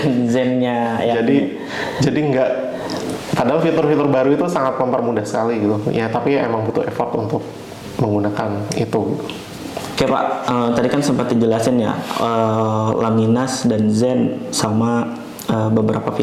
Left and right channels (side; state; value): both; identical; correlation 1.00